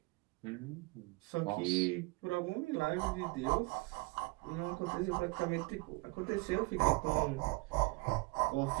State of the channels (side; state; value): left; quieter; 25.6 dB